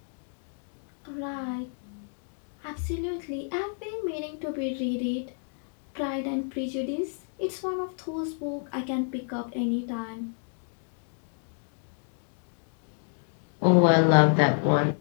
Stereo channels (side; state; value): right; silent; 56 dB below the other